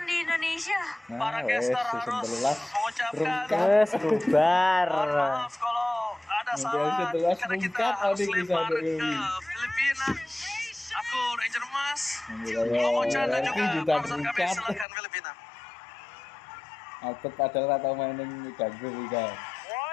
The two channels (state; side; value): drops out; right; at 14.9 s